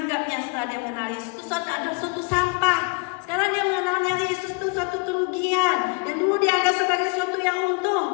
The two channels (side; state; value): right; quieter; 31.8 dB